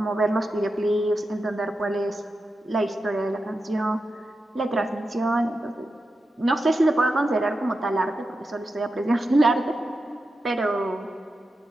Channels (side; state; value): both; normal; correlation 0.89